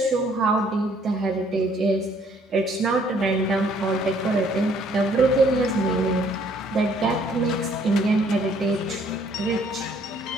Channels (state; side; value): normal; both; correlation 0.63